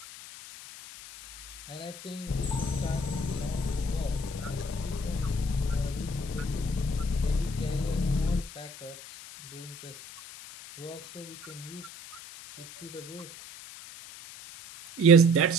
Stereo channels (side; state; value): left; noise; hiss, 15 dB below the sound